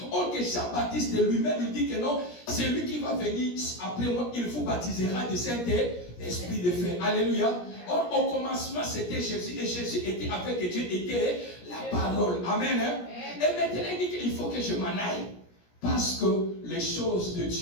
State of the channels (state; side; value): late; right; 17 ms